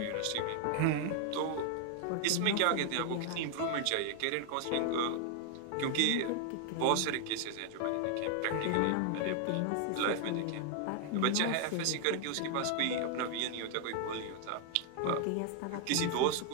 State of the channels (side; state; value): both; different; correlation 0.00